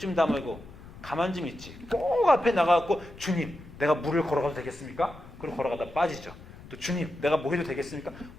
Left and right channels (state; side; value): noise; left; rumble, 18 dB below the sound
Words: 다물고 가만 좀 있지. 꼭 앞에 나가갖고 주님 내가 물을 걸어가도 되겠습니까? 그리고 걸어가다 빠지죠. 또 주님 내가 뭐 해도 되겠습니까?